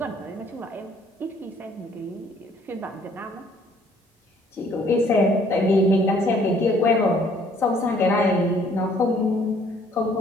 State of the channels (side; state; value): both; normal; correlation 0.61